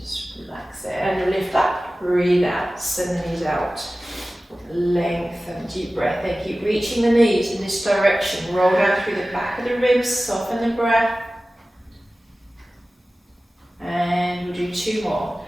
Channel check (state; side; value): normal; both; correlation 0.96